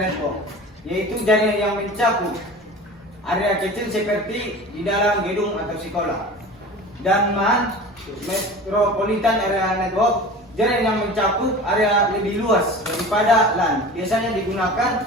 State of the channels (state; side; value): normal; both; correlation 0.37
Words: Network, yaitu jaringan yang mencakup area kecil seperti di dalam gedung atau sekolah. Dan MAN, Metropolitan Area Network, jaringan yang mencakup area lebih luas daripada LAN, biasanya